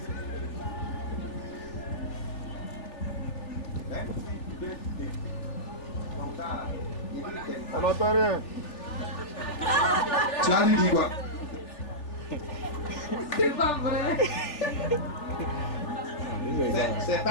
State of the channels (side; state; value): right; late; 3.4 ms